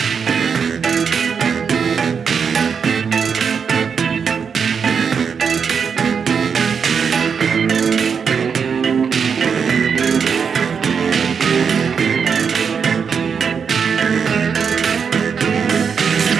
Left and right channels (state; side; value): quieter; left; 6.4 dB